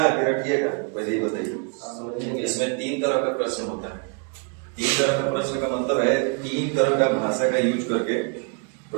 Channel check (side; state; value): left; quieter; 36.6 dB